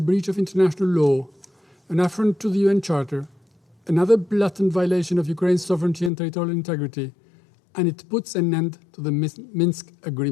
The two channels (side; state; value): right; drops out; at 6.1 s